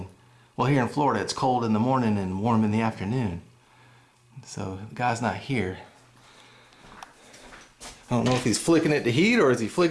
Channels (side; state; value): both; identical; correlation 1.00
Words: Well, here in Florida, it's cold in the morning and warm in the afternoon. So the guy's not here. I don't know if he's flicking it to heat or is he